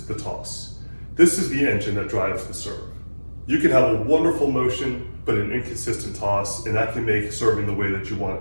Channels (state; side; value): inverted; both; correlation -1.00